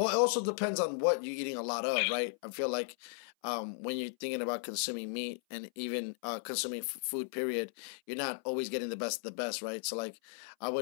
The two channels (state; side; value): silent; right; 54 dB below the other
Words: it also depends on what you're eating a lot of, right? I feel like when you're thinking about consuming meat and even consuming food, period, you're not always getting the best of the best, right? So, like, I